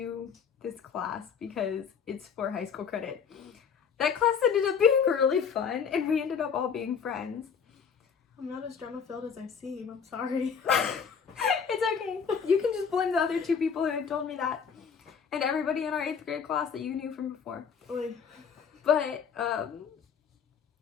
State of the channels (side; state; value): right; quieter; 6.6 dB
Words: this class because it's for high school credit. That class ended up being really fun, and we ended up all being friends. I'm not as drama-filled as I seem, I'm sorry. It's okay. You can just blame the other 2 people who had told me that. And everybody in our 8th grade class that you knew from before. Oy. But